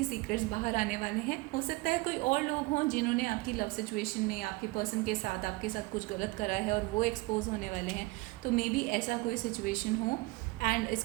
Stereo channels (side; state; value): left; quieter; 23.2 dB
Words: सीक्रेट्स बाहर आने वाले हैं। हो सकता है कोई और लोग हों जिन्होंने आपकी लव सिचुएशन में आपके पर्सन के साथ आपके साथ कुछ गलत करा है और वो एक्सपोज होने वाले हैं। तो मे बी ऐसा कोई सिचुएशन हो। एंड इस